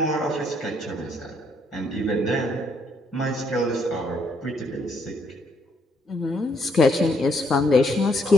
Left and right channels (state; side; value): normal; both; correlation 0.71